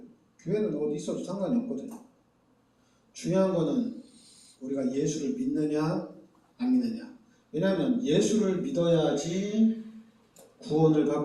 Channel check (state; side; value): identical; both; correlation 1.00